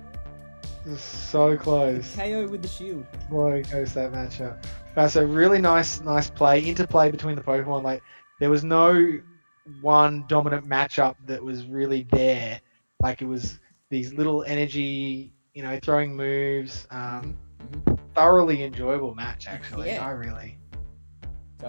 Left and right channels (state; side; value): inverted; both; correlation -1.00